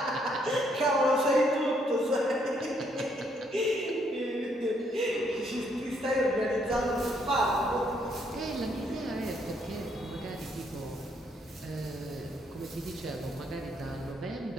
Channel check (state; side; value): normal; both; correlation 0.71